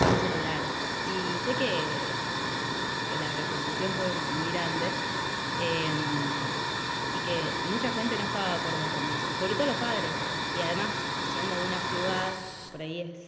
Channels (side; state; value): both; identical; correlation 1.00